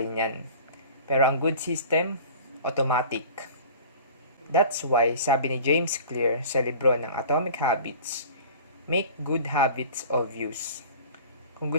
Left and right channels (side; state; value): both; inverted; correlation -0.42